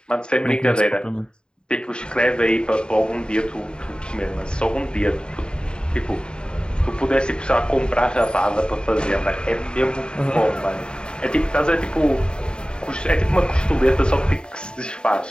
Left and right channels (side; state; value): right; late; 0.050 ms